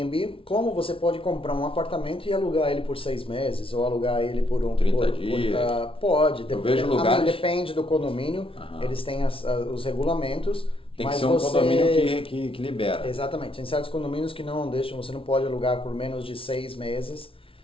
como você pode comprar um apartamento e alugar ele por 6 meses, ou alugar ele por 30 dias. Pode. Eu vejo lugares... Depende do condomínio. Eles têm os regulamentos. Tem que ser um condomínio que libera. Exatamente. Tem certos condomínios que não deixam, você não pode alugar por menos de 6 meses.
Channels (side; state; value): right; late; 0.26 ms